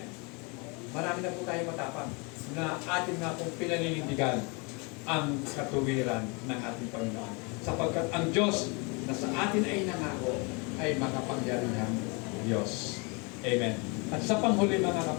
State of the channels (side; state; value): right; quieter; 30.8 dB